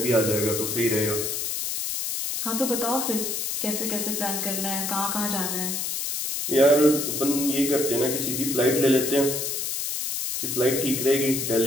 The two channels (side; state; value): left; noise; hiss, 2 dB below the sound